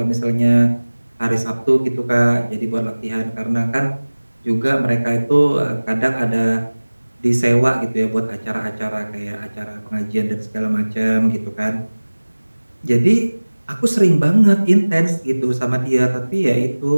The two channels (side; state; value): both; inverted; correlation -1.00